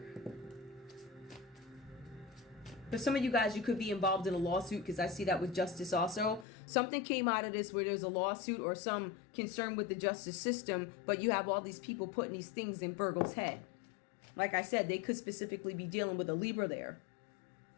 For some of you guys, you could be involved in a lawsuit, because I see that with justice also. Something came out of this where there's a lawsuit or some concern with the justice system, but you have all these people putting these things in Virgo's head. Like I said, they could specifically be dealing with a Libra there.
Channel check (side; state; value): right; drops out; at 6.5 s